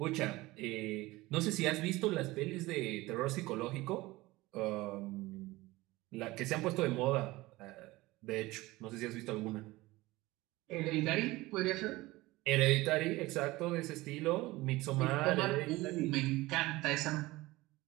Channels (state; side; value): quieter; left; 19.8 dB